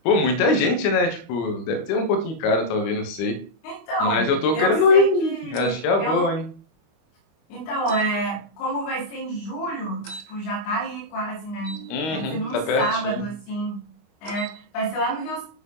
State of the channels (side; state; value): right; late; 25 ms